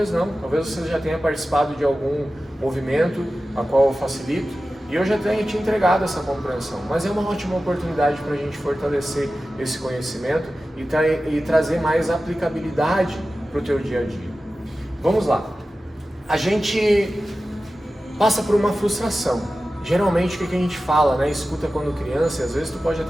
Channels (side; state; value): both; normal; correlation 0.94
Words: não. Talvez você já tenha participado de algum movimento a qual eu facilito, e eu já tenho te entregado essa compreensão, mas é uma ótima oportunidade para a gente fortalecer esse conhecimento e trazer mais aplicabilidade para o teu dia a dia. Vamos lá. A gente passa por uma frustração. Geralmente o que a gente fala, né? Escuta quando criança, e às vezes tu pode